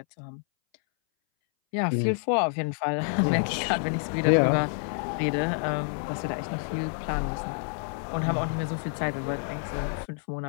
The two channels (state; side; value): silent; right; 59 dB below the other